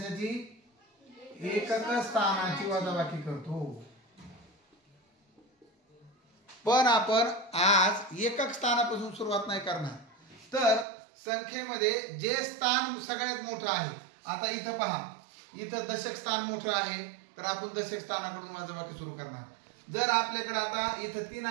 एकक स्थानाची वजाबाकी करतो. पण आपण आज एकक स्थानापासून सुरुवात नाही करणार. तर संख्येमध्ये जे स्थान सगळ्यात मोठं आहे, आता इथं पहा, इथं दशक स्थान मोठं आहे तर आपण दशक स्थानाकडून वजाबाकी सुरू करणार. जर आपल्याकडे आता इथं 3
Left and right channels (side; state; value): left; drops out; at 10.9 s